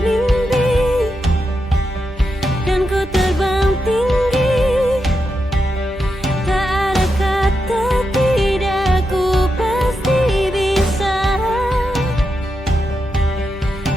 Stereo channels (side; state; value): both; normal; correlation 0.86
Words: mimpi, dan ku terbang tinggi.